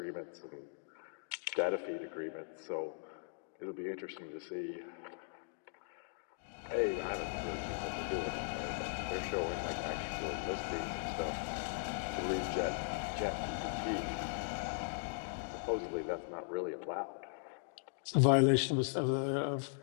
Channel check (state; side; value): silent; right; digital silence